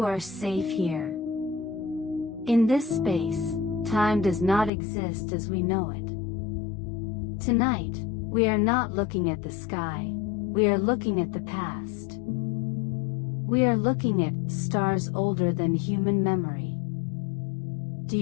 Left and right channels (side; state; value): right; drops out; at 4.7 s